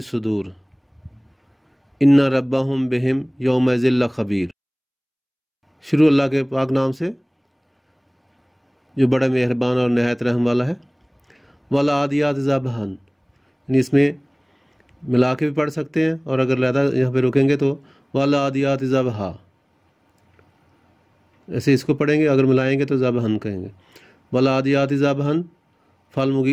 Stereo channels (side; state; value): both; identical; correlation 1.00